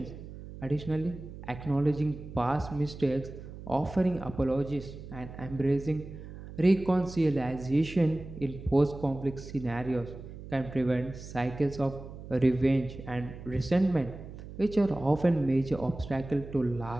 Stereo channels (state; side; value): noise; right; hum, 13 dB below the sound